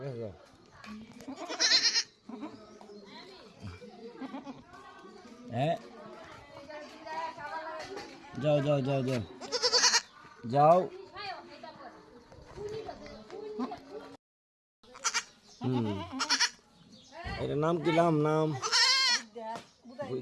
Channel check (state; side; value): identical; both; correlation 1.00